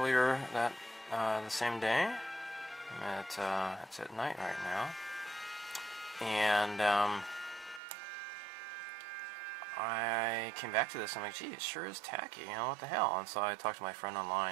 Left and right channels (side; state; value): left; drops out; at 7.8 s